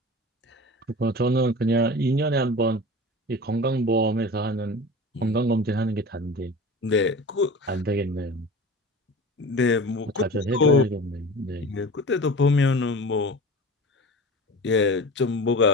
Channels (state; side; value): normal; both; correlation 0.35